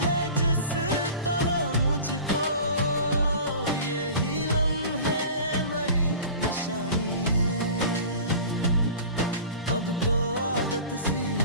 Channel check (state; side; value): inverted; both; correlation -0.39